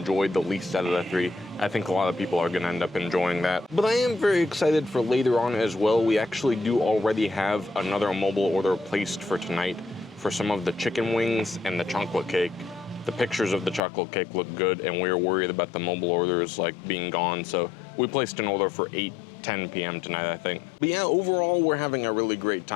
the least out of the 3. I think a lot of people are gonna end up enjoying that. But I am very excited for later on as well. We actually do already have another mobile order placed for tonight for some of the chicken wings and the chocolate cake. The pictures of the chocolate cake look good, and we were worried about the mobile orders like being gone, so we placed an order for 8:10 p.m. tonight, I think. But yeah, overall, we're having a really great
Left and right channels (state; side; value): drops out; right; at 13.8 s